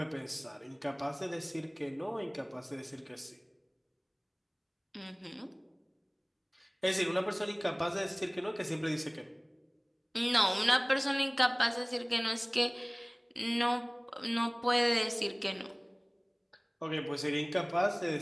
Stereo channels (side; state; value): both; identical; correlation 1.00